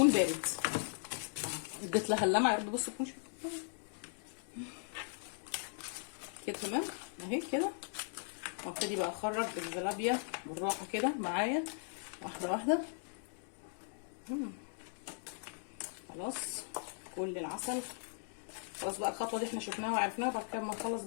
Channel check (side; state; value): right; silent; digital silence